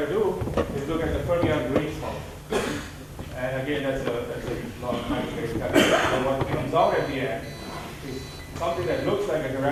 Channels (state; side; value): identical; both; correlation 1.00